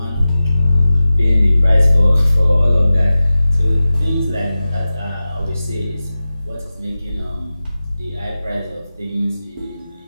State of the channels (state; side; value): inverted; both; correlation -0.95